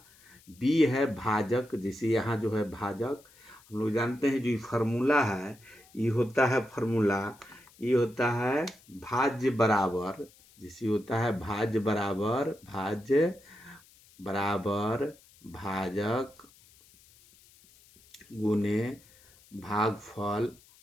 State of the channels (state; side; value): noise; left; hiss, 27 dB below the sound